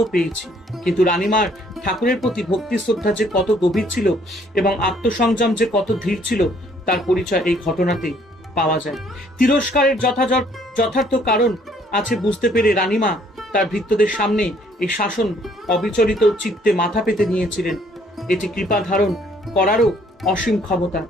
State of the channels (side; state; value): both; normal; correlation 0.63